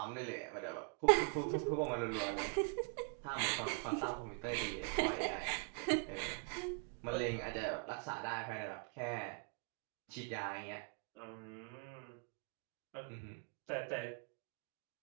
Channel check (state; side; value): quieter; left; 37.4 dB